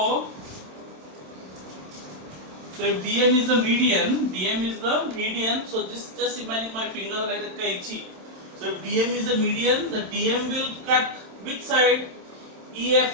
if DM is the median, so just imagine my finger like a kaichi. So if DM is the median, the DM will cut which side?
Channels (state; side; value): late; left; 27 ms